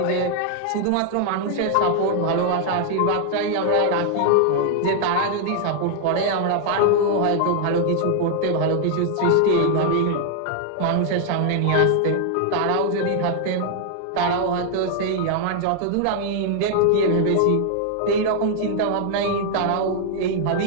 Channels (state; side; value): different; both; correlation 0.00